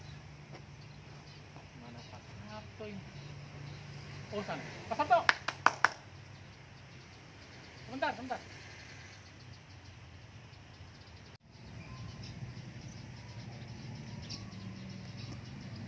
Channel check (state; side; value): identical; both; correlation 1.00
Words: Oh sana, Pak Sabto. Sebentar.